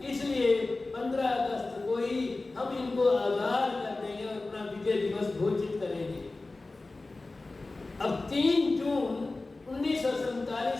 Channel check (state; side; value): quieter; right; 3.3 dB